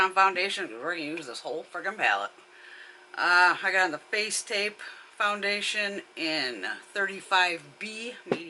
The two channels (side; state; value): both; identical; correlation 1.00